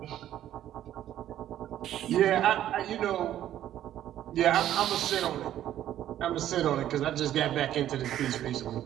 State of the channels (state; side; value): quieter; left; 12.0 dB